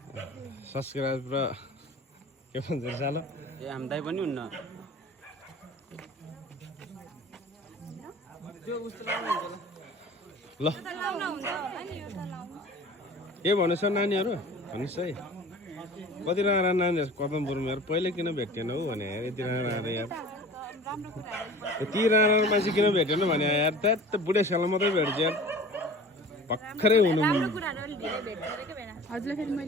सब्सक्राइब र के भन्छ सालो ए हामीलाई पनि हुन्न ल के भन्नु छ नानीहरू भन्नुहोस् है कति राम्रा नानीहरू कदमपुरमा यार पहिले किन भेट्दैन हौ भने यार यति राम्रा यार यति राम्रा मान्छे किन भेटेन भने यार त्यहाँ बुढेसकालमा मात्रै भेट्छ यार भर्खरै हुनु हजुरलाई फेरि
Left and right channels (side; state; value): both; normal; correlation 0.41